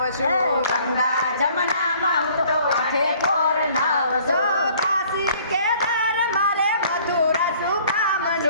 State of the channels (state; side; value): inverted; both; correlation -0.56